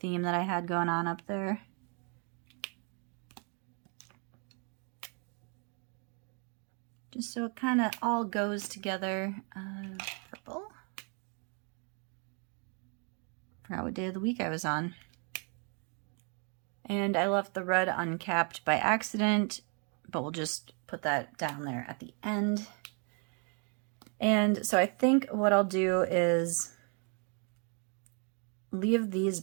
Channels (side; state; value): left; quieter; 37.7 dB